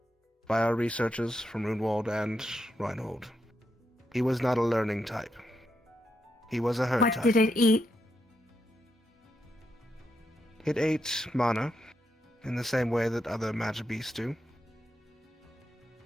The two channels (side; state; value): both; normal; correlation 0.82